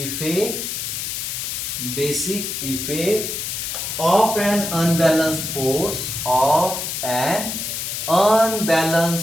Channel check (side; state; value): left; noise; hiss, 4 dB below the sound